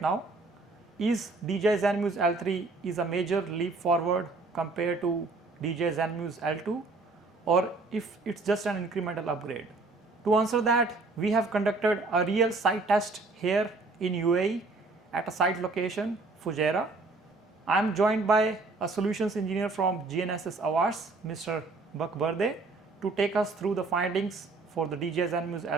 Is DJI Zenmuse L3 is a major leap forward compared to DJI Zenmuse L2, or if it's just an incremental upgrade? To answer that, we have conducted a real site test here in UAE at a site location, Fujairah. I am joined by a solutions engineer from GNSS Awards, Mr. Bakberde, to take us through the findings for the DJI Zenmuse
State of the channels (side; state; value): left; quieter; 3.5 dB